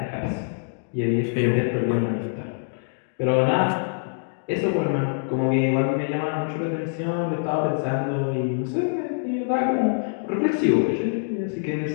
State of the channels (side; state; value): right; silent; digital silence